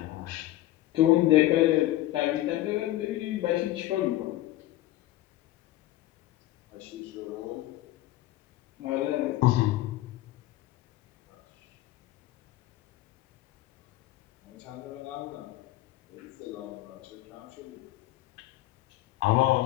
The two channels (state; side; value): quieter; right; 15.8 dB